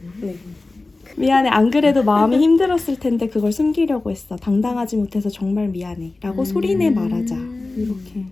네. 미안해, 안 그래도 마음이 힘들었을 텐데 그걸 숨기려고 했어. 당당하지 못해서 정말 미안해 라고 소리내 말하자. 이렇게.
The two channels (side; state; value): right; quieter; 3.3 dB